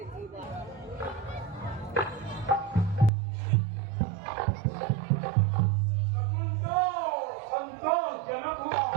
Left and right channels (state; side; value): drops out; left; at 3.1 s